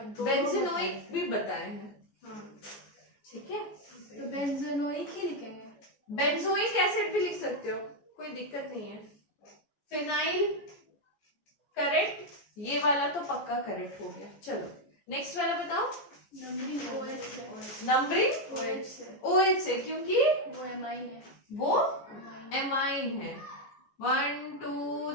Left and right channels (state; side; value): late; right; 14 ms